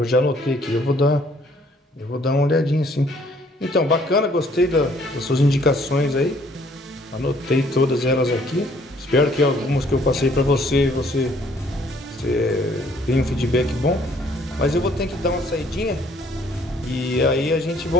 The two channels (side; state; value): both; normal; correlation 0.62